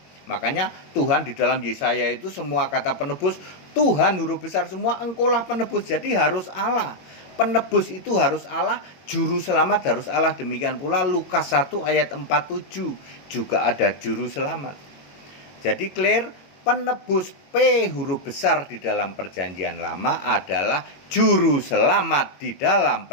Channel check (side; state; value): right; late; 22 ms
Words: Makanya Tuhan di dalam Yesaya itu semua kata penebus Tuhan huruf besar semua, engkaulah penebus. Jadi harus Allah. Penebus itu harus Allah, juru selamat harus Allah. Demikian pula Lukas 1 ayat 47 juga ada juru selamat. Jadi clear, penebus P huruf besar di dalam Perjanjian Lama adalah juru selamat di dalam